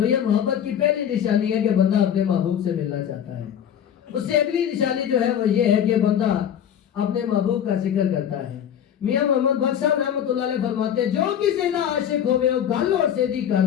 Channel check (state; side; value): quieter; right; 9.3 dB